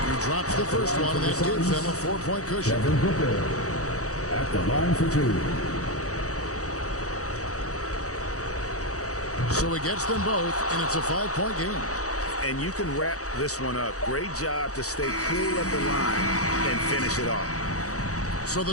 He drops the first one, and that gives them a 4-point cushion. Devin Booker at the line for 2. So he gets them both, and it's a 5-point game. And you can wrap this one up. Great job to stay cool at the line and finish it off. So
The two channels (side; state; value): right; late; 0.66 ms